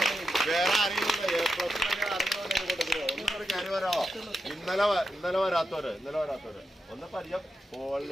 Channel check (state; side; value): normal; both; correlation 0.87